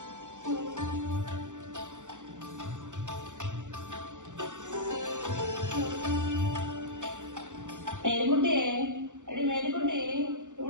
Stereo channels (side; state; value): left; late; 0.86 ms